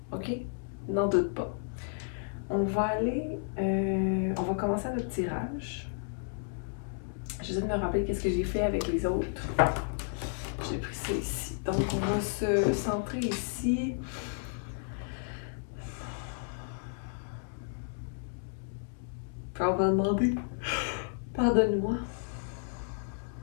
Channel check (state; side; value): silent; right; digital silence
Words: Ok? N'en doute pas. On va commencer notre tirage. J'essaie de me rappeler qu'est-ce que j'ai fait avec les autres. J'ai pris ça ici. Donc, on va se centrer ici. Puis on va demander, pardonne-moi,